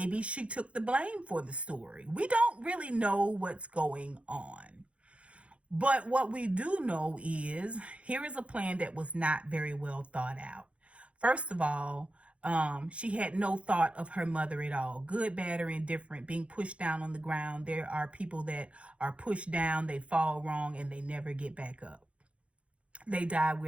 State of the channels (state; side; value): late; left; 0.061 ms